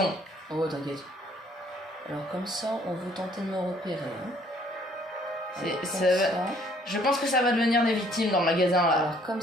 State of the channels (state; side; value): normal; both; correlation 0.61